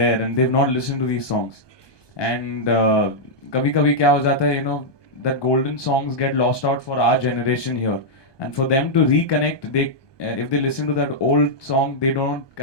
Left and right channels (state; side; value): late; right; 1.2 ms